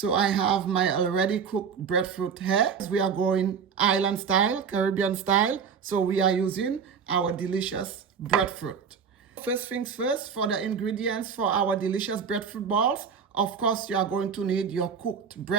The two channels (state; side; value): quieter; left; 6.5 dB